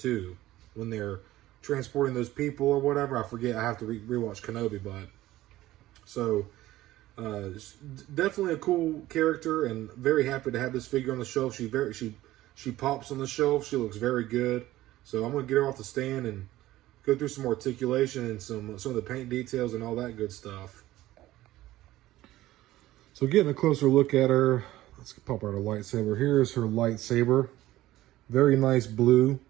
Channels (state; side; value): quieter; left; 15.8 dB